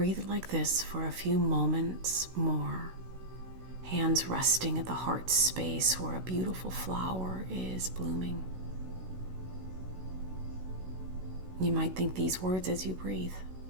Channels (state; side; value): late; left; 16 ms